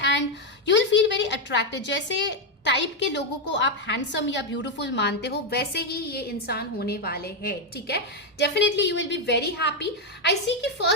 and you will feel very attractive. जैसे टाइप के लोगों को आप हैंडसम या ब्यूटीफुल मानते हो, वैसे ही ये इंसान होने वाले हैं, ठीक है। Definitely you will be very happy. I see कि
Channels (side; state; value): both; normal; correlation 0.04